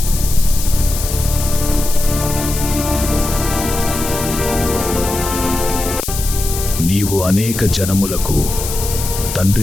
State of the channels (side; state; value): left; noise; hiss, 6 dB below the sound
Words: నీవు అనేక జనములకు